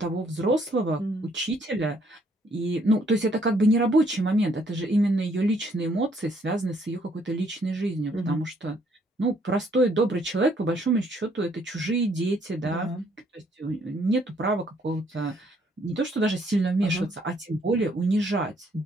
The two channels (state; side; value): normal; both; correlation 0.67